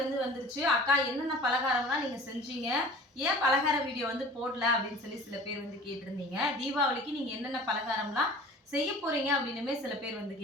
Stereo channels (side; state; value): both; normal; correlation 0.43